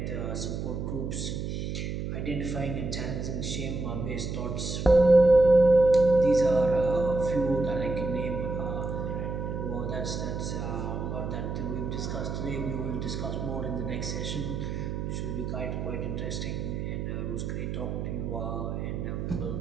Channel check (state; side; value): noise; right; hum, 4 dB below the sound